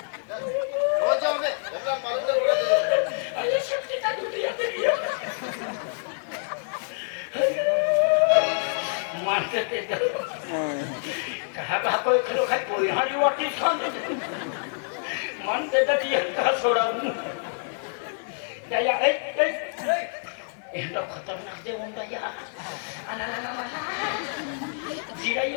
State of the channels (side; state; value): right; silent; 60 dB below the other